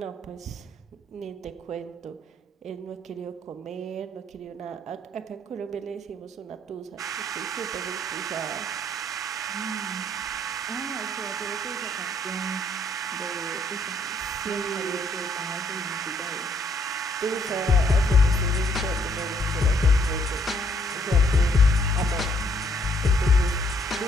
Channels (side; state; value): both; normal; correlation 0.68